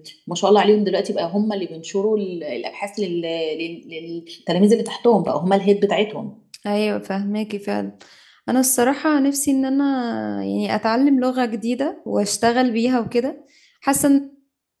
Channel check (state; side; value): identical; both; correlation 1.00